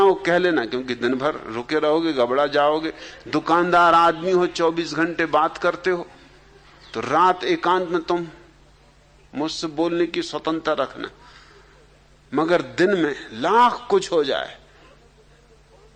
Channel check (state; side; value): identical; both; correlation 1.00